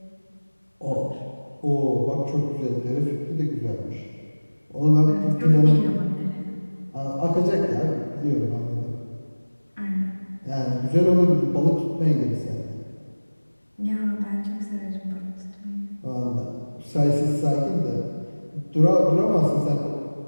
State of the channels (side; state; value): both; inverted; correlation -1.00